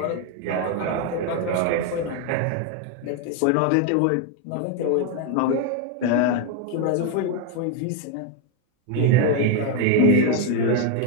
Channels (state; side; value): different; both; correlation 0.01